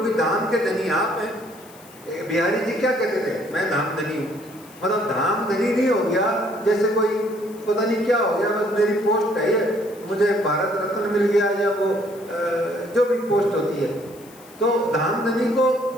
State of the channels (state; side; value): noise; left; hiss, 23 dB below the sound